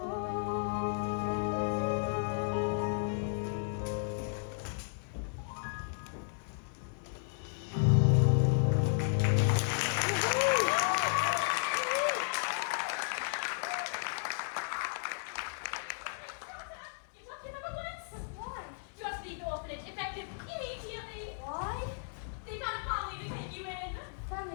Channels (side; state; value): right; silent; 55 dB below the other